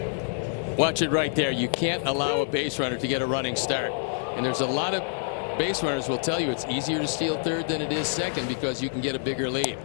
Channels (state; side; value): silent; right; digital silence